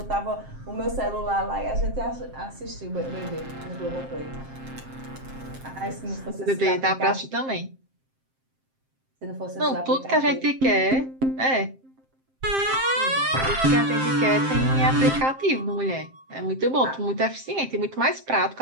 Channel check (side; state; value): left; late; 7.6 ms